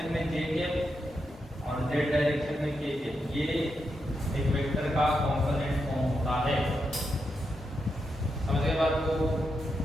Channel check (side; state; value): both; normal; correlation 0.85